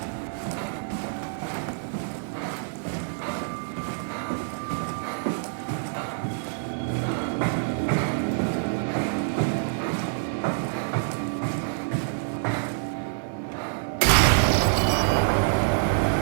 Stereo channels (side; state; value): left; silent; digital silence